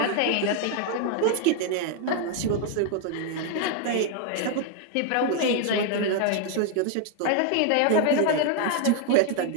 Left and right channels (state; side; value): different; both; correlation 0.00